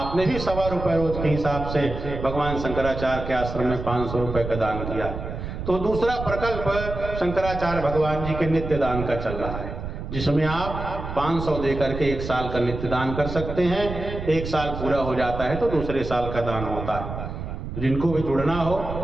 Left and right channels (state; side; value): noise; right; rumble, 7 dB below the sound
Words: भी 1.25 रुपये रोज के हिसाब से भगवान शंकराचार्य के आश्रम में 500 रुपये का दान किया। तो दूसरा प्रकल्प शंकराचार्य भगवान जी के नित्य दान का चल रहा है, जिसमें आप 500 दे करके 1 साल का नित्य दान कर सकते हैं। 1 साल पूरा हो जाता है तो दूसरे साल का दान होता है। जिनको भी जुड़ना हो,